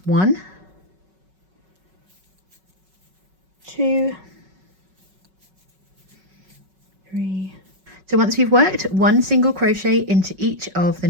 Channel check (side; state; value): left; late; 5.3 ms